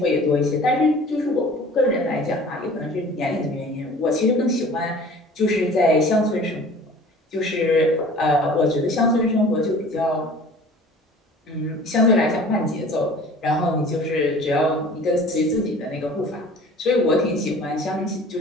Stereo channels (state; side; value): normal; both; correlation 0.46